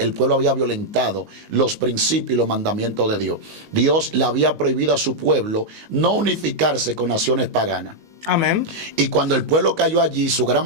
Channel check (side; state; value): left; late; 19 ms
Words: pueblo había violentado los principios y los mandamientos de Dios. Dios le había prohibido a su pueblo no unificarse con naciones paganas. Amén. Y cuando el pueblo cayó allí, su gran